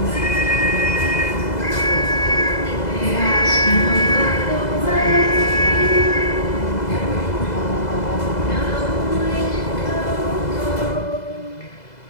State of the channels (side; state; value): right; late; 2.0 ms